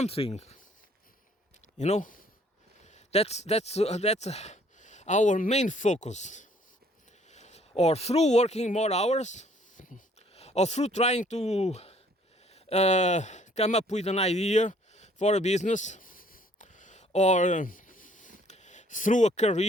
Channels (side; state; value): both; normal; correlation 0.60